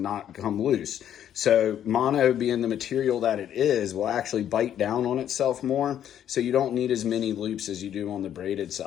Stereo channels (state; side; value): quieter; right; 10.2 dB